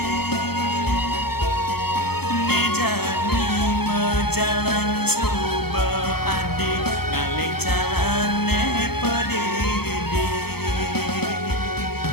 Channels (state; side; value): late; right; 0.96 ms